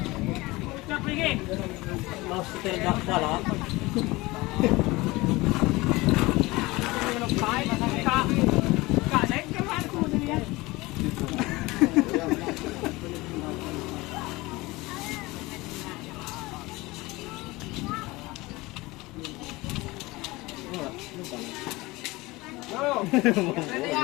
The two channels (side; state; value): right; quieter; 21.5 dB